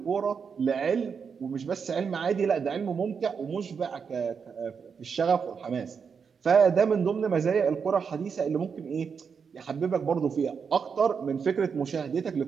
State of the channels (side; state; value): left; quieter; 6.2 dB